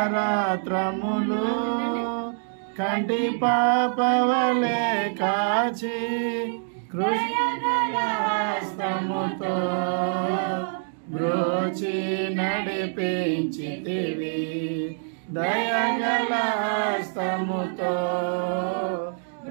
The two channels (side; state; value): left; silent; digital silence